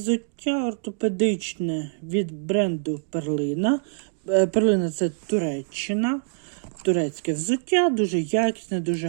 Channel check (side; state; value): left; silent; digital silence